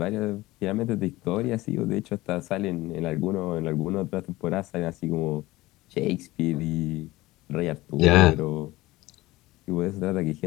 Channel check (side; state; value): right; quieter; 18.9 dB